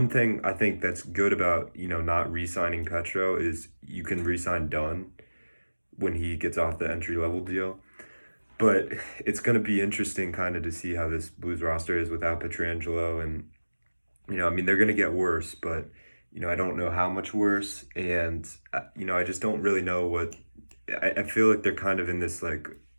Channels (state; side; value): inverted; both; correlation -1.00